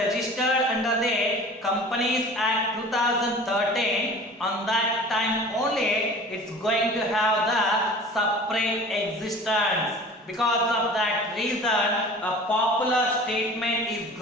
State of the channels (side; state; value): both; normal; correlation 0.42